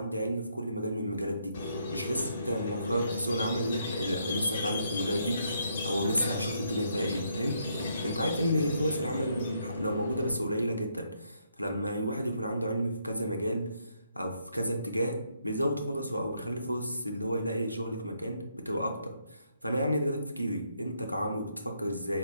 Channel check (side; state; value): both; inverted; correlation -0.74